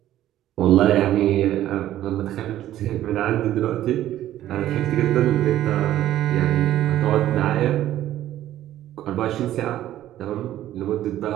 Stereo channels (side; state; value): left; quieter; 13.0 dB